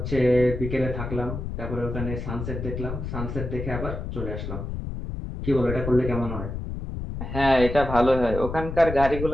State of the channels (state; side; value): noise; left; rumble, 6 dB below the sound